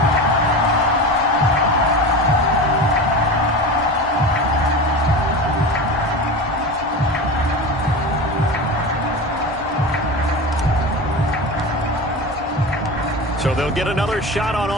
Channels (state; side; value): normal; both; correlation 0.28